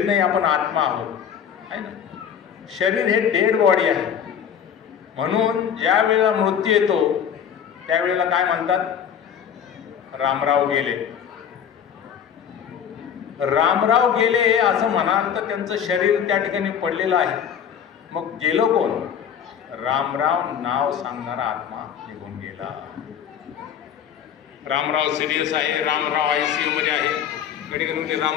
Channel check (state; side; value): quieter; right; 8.4 dB